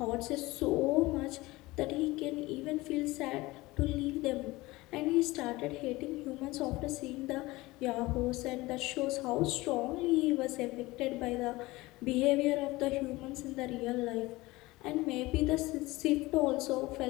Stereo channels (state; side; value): quieter; right; 20.4 dB